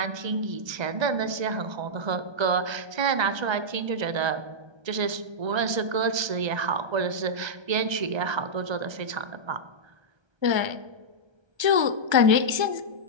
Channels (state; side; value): late; left; 1.3 ms